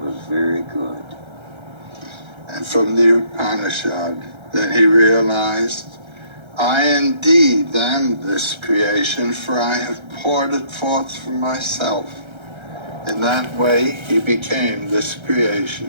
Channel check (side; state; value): left; late; 1.3 ms